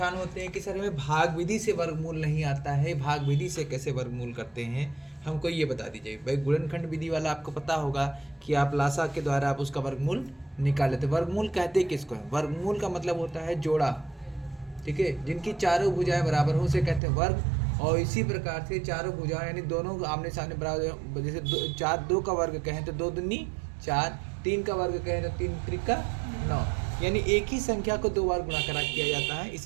होते हैं कि सर हमें भाग विधि से वर्गमूल नहीं आता है, भाग विधि से कैसे वर्गमूल करते हैं, हमको ये बता दीजिए। भाई गुणनखंड विधि वाला आपको पता होगा कि आप लासा के द्वारा आप उसका वर्गमूल निकाल लेते। वर्गमूल कहते किसको है? वर्गमूल का मतलब होता है जोड़ा, ठीक है, जिनकी चारों भुजाएं बराबर हो उसे कहते हैं वर्ग। और इसी प्रकार से चारों भुजाएं यानी दोनों आमने सामने बराबर, जैसे दो का वर्ग कहें तो दो दूनी 4, 3 का वर्ग कहें तो 3 त्रिका 9, यानी एक ही संख्या को 2 बार गुणा करा किया जाता है,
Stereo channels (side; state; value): left; drops out; at 17.0 s